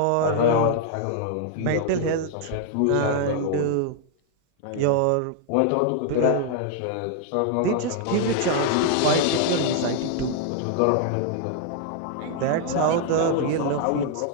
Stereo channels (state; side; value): different; both; correlation 0.00